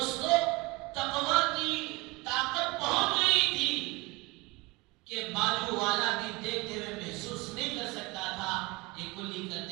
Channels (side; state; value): left; quieter; 24.4 dB